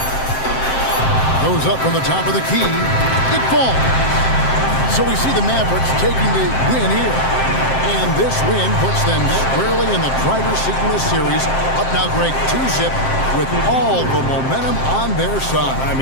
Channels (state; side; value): late; right; 7.6 ms